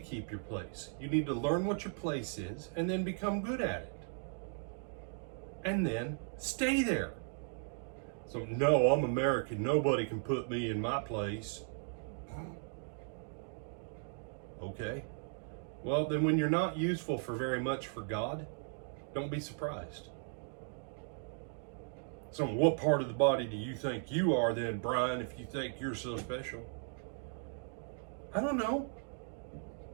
your place. You need to learn what your place is and then become good at it. And then stay there. So, no, I'm American. Nobody can put me in my place. Okay. Well, then when you're not useful for very much for God, don't be surprised. So what part of the body do you think you are then, Brian, if you think you're so special? I don't know.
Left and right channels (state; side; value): silent; left; 53 dB below the other